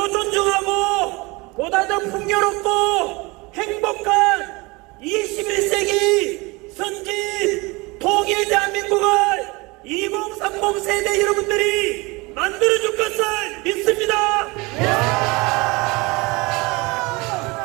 존중하고 보다 더 풍요롭고 행복한 21세기 선진 통일 대한민국을 2030 세대 여러분들이 만들어줄 것을 믿습니다.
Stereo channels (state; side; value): quieter; left; 25.1 dB